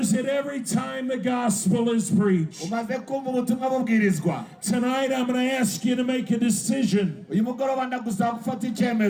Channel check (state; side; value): identical; both; correlation 1.00